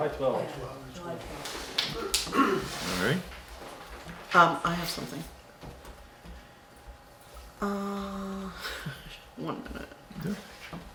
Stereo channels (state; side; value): identical; both; correlation 1.00